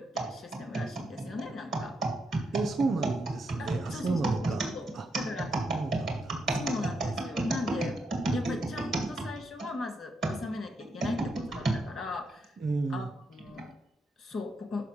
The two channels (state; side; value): normal; both; correlation 0.80